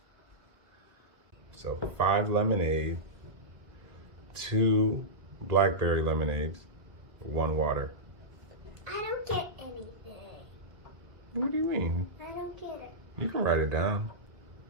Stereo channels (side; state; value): left; late; 1.7 ms